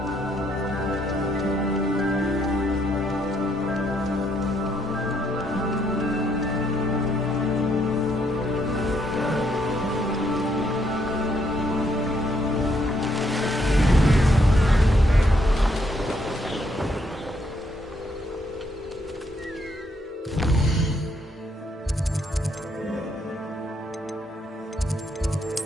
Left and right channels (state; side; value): normal; both; correlation 0.73